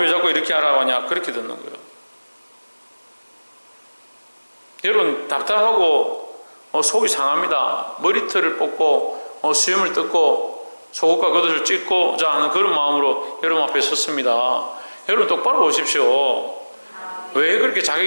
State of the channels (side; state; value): both; inverted; correlation -1.00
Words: 자꾸 이렇게 하라고 하냐, 그렇게 듣는 거예요. 여러분 답답하고 속이 상합니다. 머리털을 뽑고 수염을 뜯고 속옷과 겉옷을 찢고자 하는 그런 마음으로 여러분 앞에 섰습니다. 여러분 똑바로 보십시오. 왜 그렇게